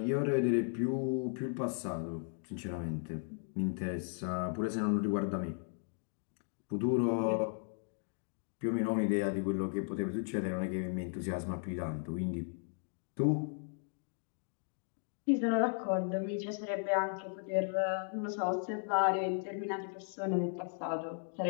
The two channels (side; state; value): right; silent; 54 dB below the other